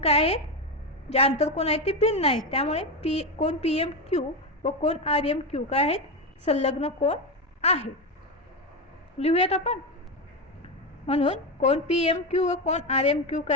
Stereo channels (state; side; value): normal; both; correlation 0.13